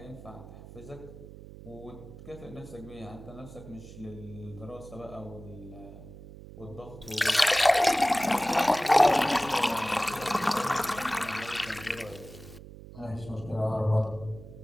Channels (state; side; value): noise; right; hum, 16 dB below the sound